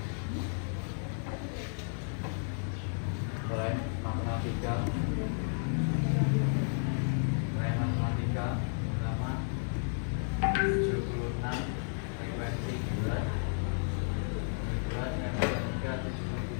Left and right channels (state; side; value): silent; right; 56 dB below the other